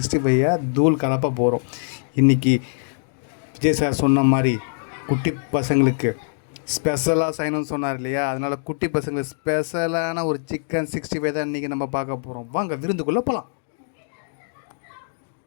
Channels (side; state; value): right; silent; digital silence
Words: தூள் கலப்ப போகிறோம். இன்றைக்கி விஜய் சார் சொன்ன மாதிரி குட்டி பசங்களுக்கு ஸ்பெஷலாக செய்யணும்னு சொன்னார் இல்லையா, அதனால் குட்டி பசங்களுக்கு ஸ்பெஷலான ஒரு சிக்கன் 65 தான் இன்றைக்கி நம்ம பார்க்க போகிறோம். வாங்க விருந்துக்குள்ளே போகலாம்.